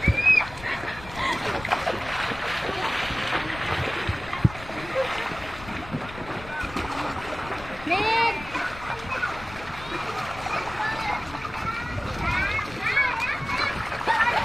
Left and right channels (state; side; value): noise; left; rumble, 15 dB below the sound